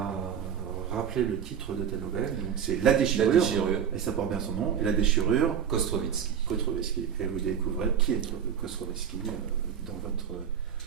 rappeler le titre de ta nouvelle. Donc c'est La déchirure. La déchirure. Et ça porte bien son nom. Et La déchirure. Kostrovitsky. Et vous découvrez qui est Kostrovitsky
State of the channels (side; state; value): left; quieter; 8.2 dB